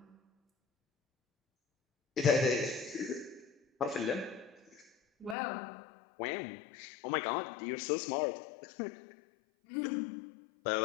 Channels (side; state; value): right; drops out; at 5.4 s